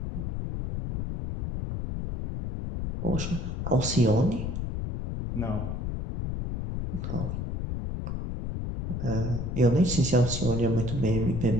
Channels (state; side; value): noise; left; rumble, 3 dB below the sound